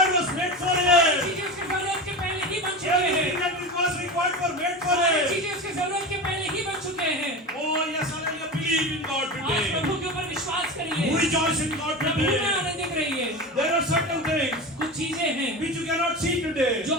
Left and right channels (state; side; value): normal; both; correlation 0.26